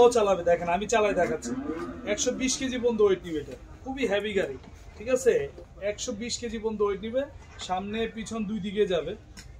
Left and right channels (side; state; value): both; identical; correlation 1.00